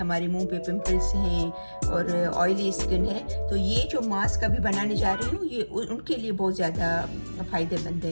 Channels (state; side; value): inverted; both; correlation -1.00